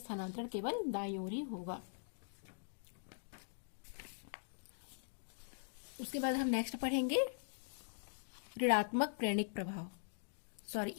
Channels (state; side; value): silent; right; digital silence